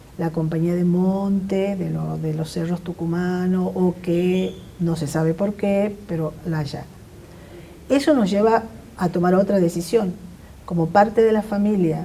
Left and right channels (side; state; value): both; identical; correlation 1.00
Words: la compañía de monte, de los cerros tucumanos, o que no se sabe por qué, pero la allanan. Eso nos lleva a tomar otra decisión. Como parte de la